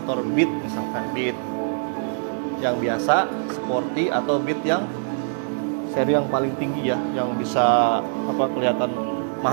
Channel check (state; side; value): silent; left; digital silence